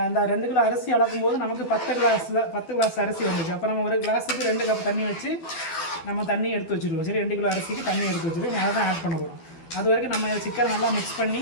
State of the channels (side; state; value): right; late; 12 ms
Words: இந்த 2 கிலோ அரிசி அளக்கும் போது நமக்கு 10 கிளாஸ் அரிசி வந்துச்சு. அப்போ நம்ம ஒரு கிளாஸுக்கு 2 கப் தண்ணி வச்சு நம்ம தண்ணி எடுத்து வச்சுருவோம். சரி, 2 கிலோ அரிசிக்கு தண்ணி எடுத்து வச்சுருவோம். அதை தான் ஆட் பண்ண போகிறோம். அது வரைக்கும் நம்ம சிக்கன் நல்லா மிக்ஸ் பண்ணி